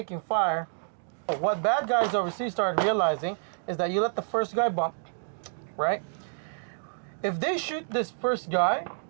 fire, what bad guys overseas started realizing is that you let the first guy bump, right? If they shoot this first guy,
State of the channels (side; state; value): left; silent; digital silence